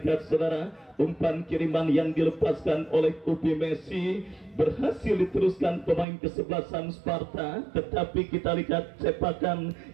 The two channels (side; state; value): left; drops out; at 6.1 s